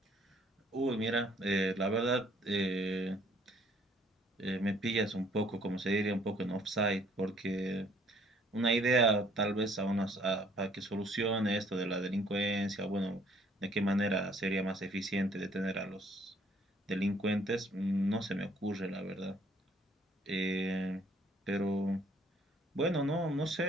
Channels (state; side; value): normal; both; correlation 0.61